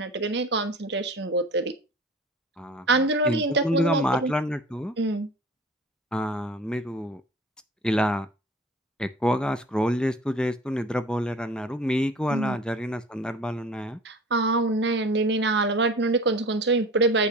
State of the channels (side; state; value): both; normal; correlation 0.41